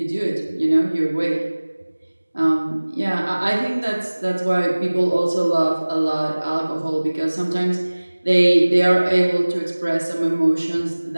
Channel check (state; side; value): inverted; both; correlation -1.00